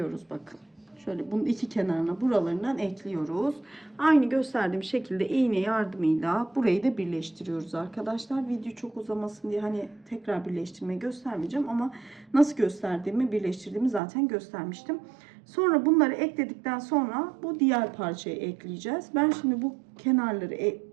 bakın. Şöyle bunun iki kenarına buralarından ekliyoruz. Aynı gösterdiğim şekilde iğne yardımıyla burayı da birleştiriyoruz arkadaşlar. Video çok uzamasın diye hani tekrar birleştirmeyi göstermeyeceğim ama nasıl gösterdiğimi birleştirdiğimi zaten göstermiştim. Sonra bunları ekledikten sonra bu diğer parçayı ekleyeceğiz. Ben şimdi bu kenarları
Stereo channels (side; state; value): left; drops out; at 14.0 s